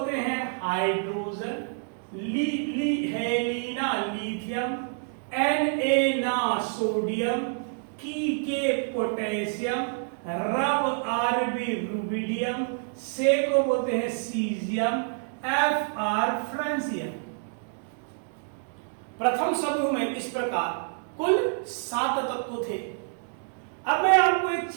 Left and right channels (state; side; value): silent; left; 58 dB below the other